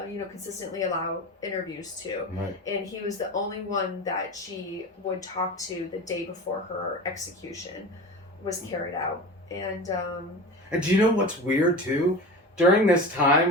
consistently allow interviews to. Right. And he was the only one that she would talk to the day before her execution was carried out. And do you know what's weird too? During this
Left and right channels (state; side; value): normal; both; correlation 0.31